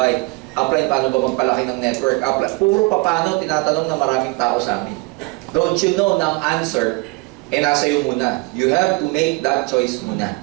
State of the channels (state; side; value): quieter; left; 26.5 dB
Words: Apply, paano ba magpalaki ng network? Apply, puro paano, tinatanong ng maraming tao sa amin. Don't you know na ang answer, nasa iyo muna. You have to make that choice muna.